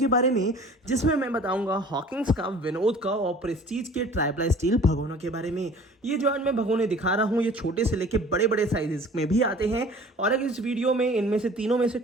बारे में, जिसमें मैं बताऊंगा हॉकिंस का, विनोद का और प्रेस्टीज के ट्राईप्लाई स्टील भगोनों के बारे में। ये जो आज मैं भगोने दिखा रहा हूँ, ये छोटे से लेके बड़े बड़े साइजेस में भी आते हैं। और अगर इस वीडियो में इनमें से तीनों में से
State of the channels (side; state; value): both; normal; correlation 0.47